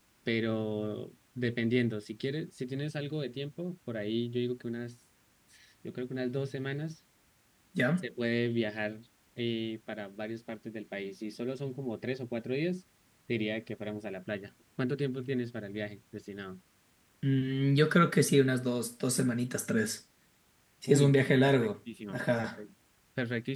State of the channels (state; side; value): identical; both; correlation 1.00